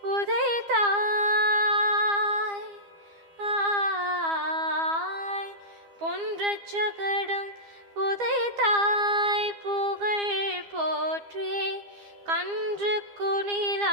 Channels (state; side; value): late; left; 12 ms